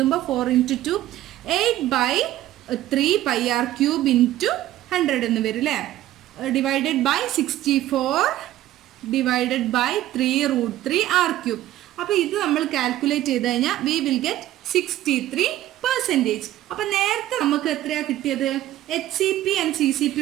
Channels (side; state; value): left; quieter; 14.1 dB